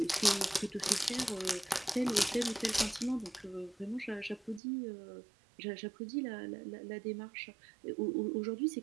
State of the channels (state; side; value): drops out; left; at 4.6 s